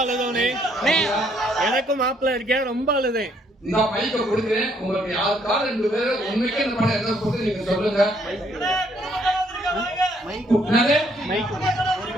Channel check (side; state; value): both; normal; correlation 0.68